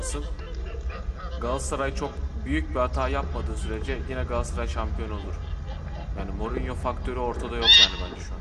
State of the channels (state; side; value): identical; both; correlation 1.00